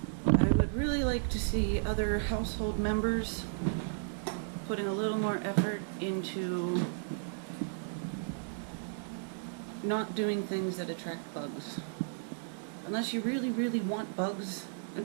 I would really like to see other household members putting a little more effort into not doing things that attract bugs. Unless you really, really want bugs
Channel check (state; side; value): silent; left; digital silence